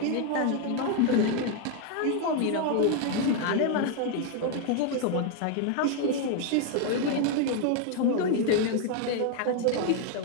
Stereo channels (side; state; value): both; different; correlation 0.01